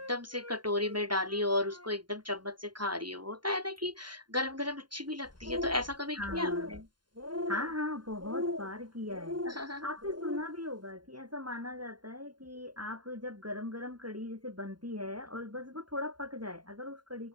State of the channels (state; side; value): late; left; 0.71 ms